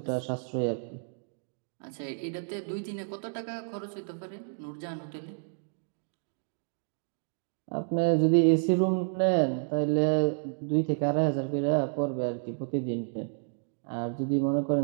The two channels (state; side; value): silent; left; digital silence